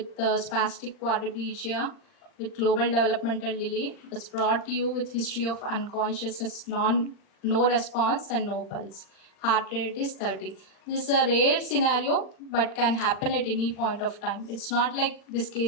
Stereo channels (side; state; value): right; late; 39 ms